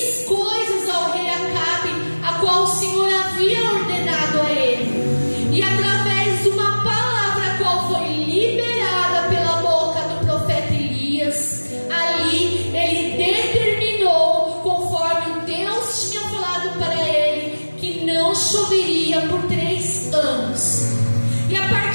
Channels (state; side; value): inverted; both; correlation -1.00